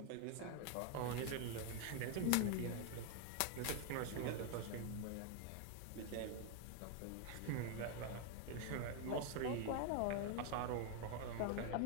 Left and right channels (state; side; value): different; both; correlation 0.01